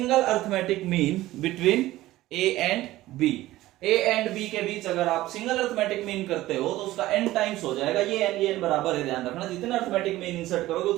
arithmetic mean between a and b। a and b के बीच अगर आप single arithmetic mean करते हो तो उसका n टाइम्स हो जाएगा। ये n बराबर है, ध्यान रखना, जितना अर्थमेटिक मीन इंसर्ट करोगे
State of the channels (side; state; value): left; quieter; 16.3 dB